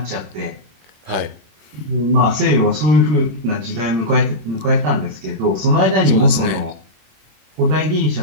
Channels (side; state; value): left; late; 26 ms